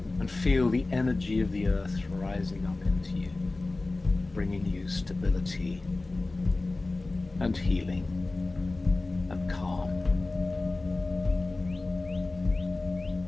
and feel the energy of the earth rising up into you, bringing you stability and healing and calm.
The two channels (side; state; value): right; quieter; 3.2 dB